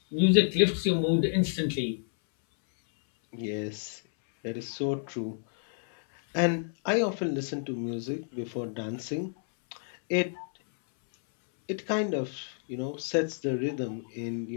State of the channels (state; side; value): silent; right; 58 dB below the other